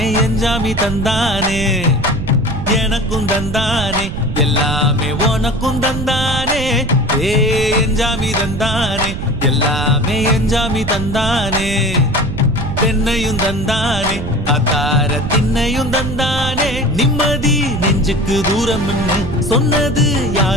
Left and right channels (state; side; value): noise; right; rumble, 6 dB below the sound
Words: எஞ்சாமி தந்தானே எனக்கும் தந்தானே எல்லாமே உனக்கும் தந்தானே ஏ எஞ்சாமி தந்தானே எல்லாமே எஞ்சாமி தந்தானே தென்னையும் தந்தானே அத்தார திண்ணையும் தந்தானே நிம்மதி நெஞ்சுக்கு தூரம்னு சொன்னது